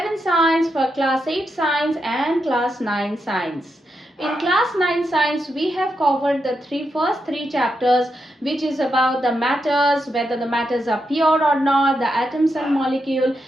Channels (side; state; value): both; normal; correlation 0.84